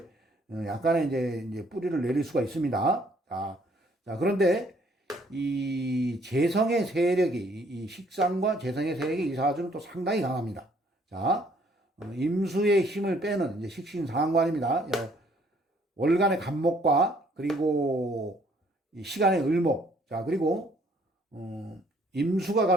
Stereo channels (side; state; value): both; normal; correlation 0.63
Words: 약간의 이제 뿌리를 내릴 수가 있습니다. 자, 그런데 이 재성의 세력이 이 식상과 재성의 세력이 이 사주는 또 상당히 강합니다. 자, 임수의 힘을 빼는 이제 식신상관입니다. 월간의 간목과 그리고 이 시간의 을목. 자, 그리고 임수가